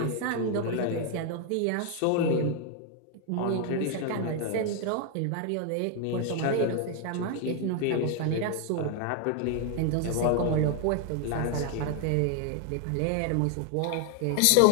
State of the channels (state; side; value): different; both; correlation 0.00